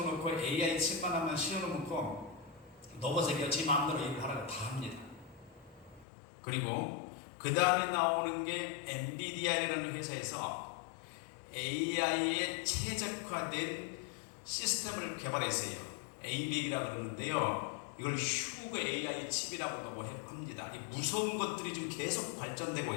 AI 칩만 하나 씌워놓고 로봇에게 지 마음대로 일을 하라고 다 합니다. 그리고 그 다음에 나오는 게 엔비디아라는 회사에서 AI에 최적화된 시스템을 개발했어요. ABAC이라고 그러는데요. 이걸 휴그 AI 칩이라고 합니다. 이 무서운 것들이 지금 계속 발전되고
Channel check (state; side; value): drops out; right; at 6.1 s